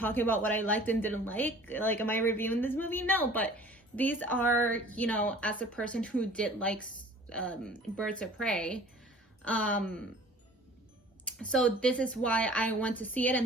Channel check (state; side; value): normal; both; correlation 0.47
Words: about what I liked and didn't like. Like, am I reviewing this movie? No, but these are, as a person who did like Birds of Prey. So this is why I went to see it,